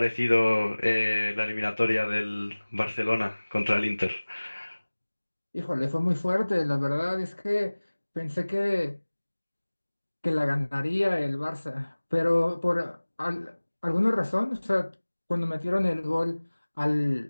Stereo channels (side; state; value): both; inverted; correlation -1.00